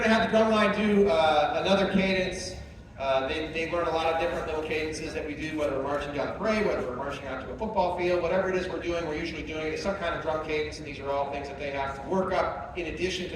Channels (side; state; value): both; identical; correlation 1.00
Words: going to have the Drumline do another cadence. They learn a lot of different little cadences that we do, whether we're marching down the parade, whether we're marching out to a football field, whatever it is we're doing, we're usually doing it as some kind of drum cadence, and these are all things that they have to work up in addition to